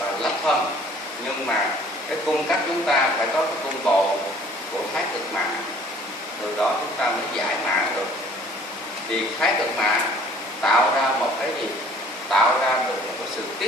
lắp phân, nhưng mà cái cung cách chúng ta phải có cái cung bộ của thái cực mã, từ đó chúng ta mới giải mã được. Thì thái cực mã tạo ra một cái gì? Tạo ra được một cái sự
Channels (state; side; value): normal; both; correlation 0.54